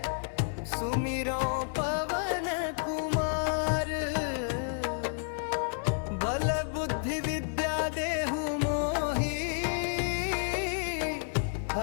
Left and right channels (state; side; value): silent; right; 57 dB below the other